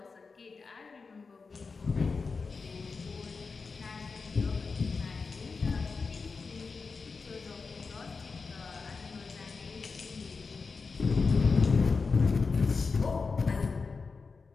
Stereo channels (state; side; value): quieter; right; 4.6 dB